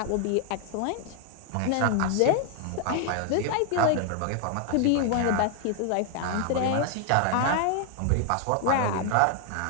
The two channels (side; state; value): both; different; correlation 0.00